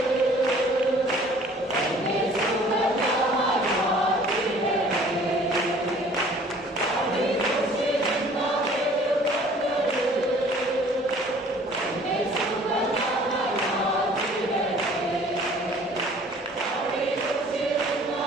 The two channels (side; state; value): both; normal; correlation 0.52